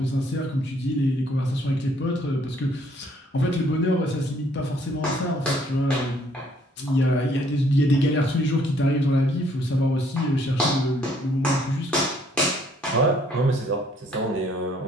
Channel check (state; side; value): normal; both; correlation 0.64